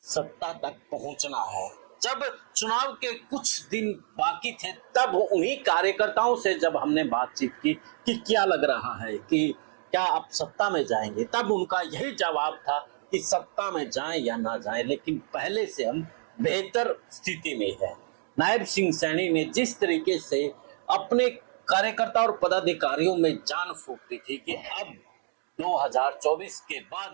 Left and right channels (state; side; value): silent; left; digital silence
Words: सत्ता तक पहुंचना है। जब चुनाव के कुछ दिन बाकी थे तब उन्हीं कार्यकर्ताओं से जब हमने बातचीत की कि क्या लग रहा है कि क्या आप सत्ता में जाएंगे, तब उनका यही जवाब था कि सत्ता में जाएं या ना जाएं, लेकिन पहले से हम बेहतर स्थिति में हैं। नायब सिंह सैनी ने जिस तरीके से अपने कार्यकर्ता और पदाधिकारियों में जान फूंक दी थी कि अब 2024 के